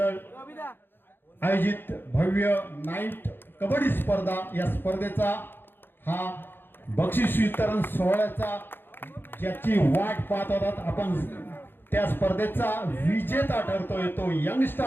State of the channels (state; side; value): late; right; 0.10 ms